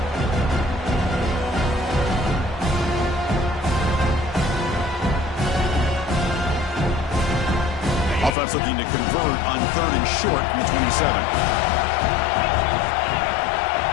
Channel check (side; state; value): right; drops out; at 8.3 s